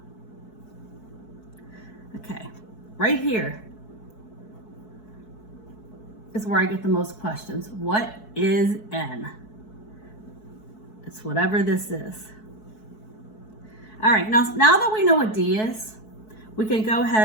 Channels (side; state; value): right; late; 4.6 ms